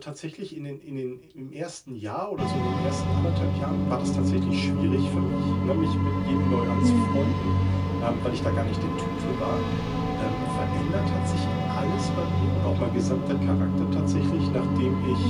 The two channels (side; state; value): both; identical; correlation 1.00